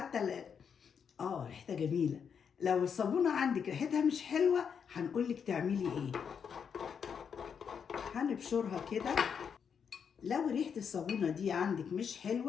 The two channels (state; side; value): quieter; right; 7.0 dB